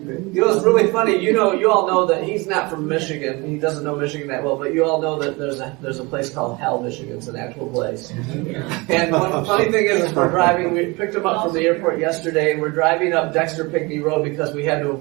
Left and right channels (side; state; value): left; quieter; 25.5 dB